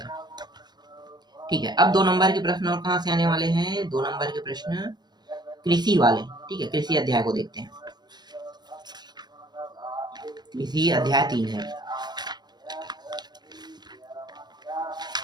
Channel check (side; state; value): left; late; 0.20 ms